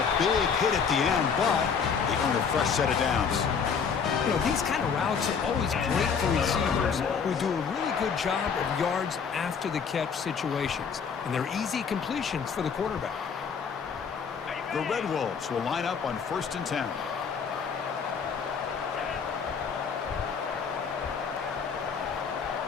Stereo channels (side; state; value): right; quieter; 6.3 dB